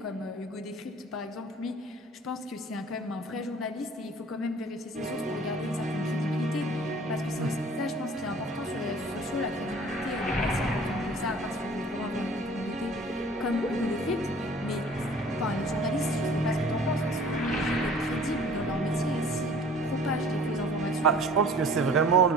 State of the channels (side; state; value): both; normal; correlation 0.49